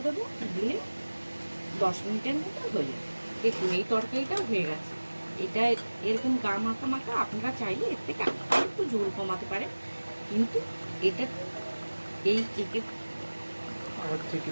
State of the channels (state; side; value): inverted; both; correlation -1.00